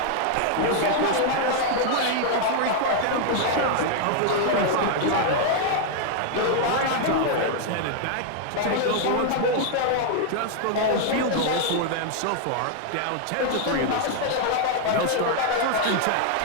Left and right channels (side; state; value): both; different; correlation 0.00